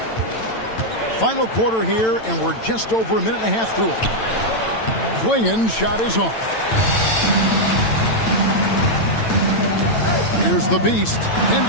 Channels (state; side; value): late; right; 9.0 ms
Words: Final quarter here, and we're just over a minute and a half through it. Klingon's shot is off. Here's the beast.